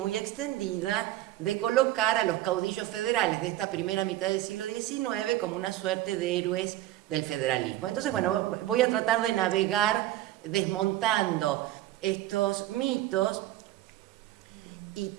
extendida, de colocar a los caudillos federales de esta primera mitad del siglo XIX como una suerte de héroes del federalismo. Entonces, bueno, voy a tratar de navegar desmontando estos mitos y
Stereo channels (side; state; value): left; quieter; 14.9 dB